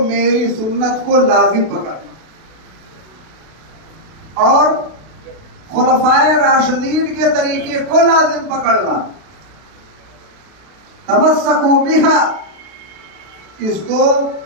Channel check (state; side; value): late; left; 32 ms